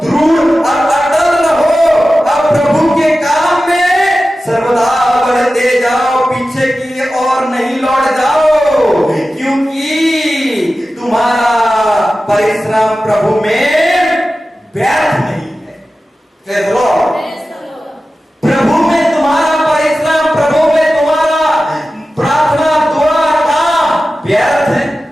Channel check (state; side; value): normal; both; correlation 0.94